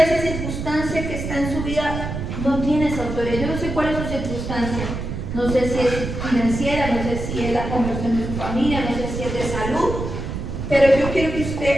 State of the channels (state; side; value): noise; right; rumble, 5 dB below the sound